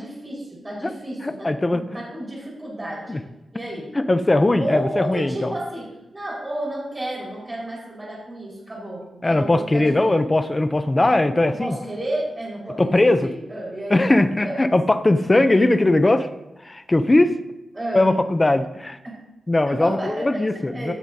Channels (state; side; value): normal; both; correlation 0.97